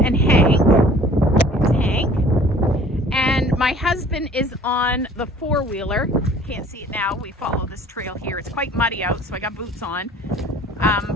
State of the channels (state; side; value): normal; both; correlation 0.51